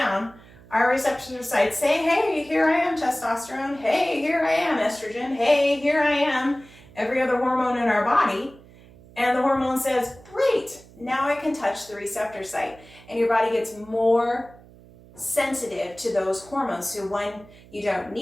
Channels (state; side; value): noise; right; hum, 23 dB below the sound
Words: our receptor sites say, hey, here I am, testosterone. Hey, here I am, estrogen. Hey, here I am, every other hormone in our body. And the hormone says, great, now I can touch the receptor site. And your body gets more sensitive to those hormones. So when you don't